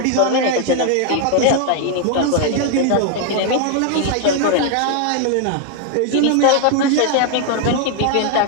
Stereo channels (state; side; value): different; both; correlation 0.01